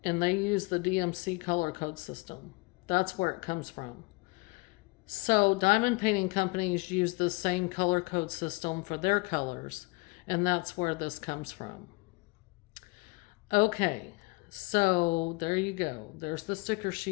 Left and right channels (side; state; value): right; quieter; 26.4 dB